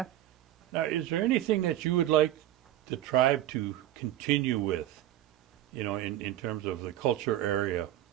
Now, is there anything that you would like the tribe to continue with, in terms of the culture area?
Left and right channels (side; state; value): left; quieter; 13.4 dB